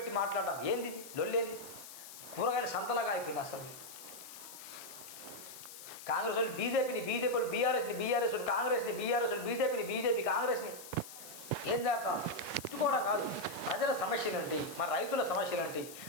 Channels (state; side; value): noise; left; hiss, 14 dB below the sound